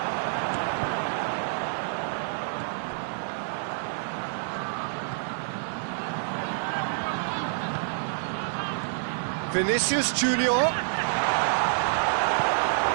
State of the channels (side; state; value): left; silent; 56 dB below the other